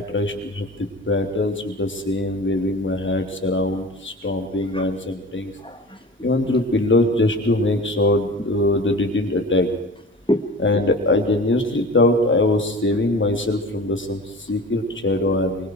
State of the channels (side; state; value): both; normal; correlation 0.37